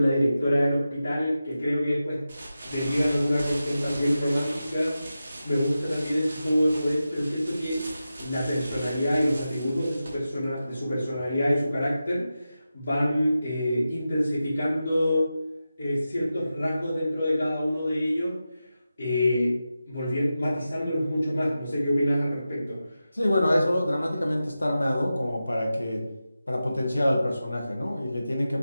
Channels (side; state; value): both; inverted; correlation -0.92